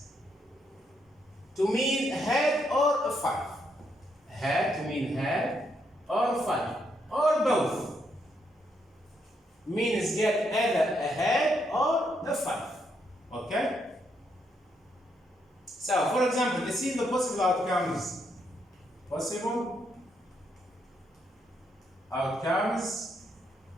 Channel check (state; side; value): normal; both; correlation 0.76